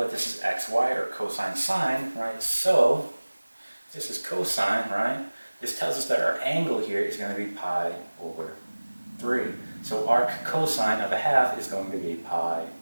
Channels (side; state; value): both; inverted; correlation -1.00